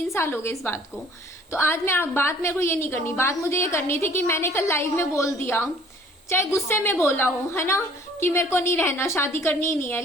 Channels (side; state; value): both; normal; correlation 0.55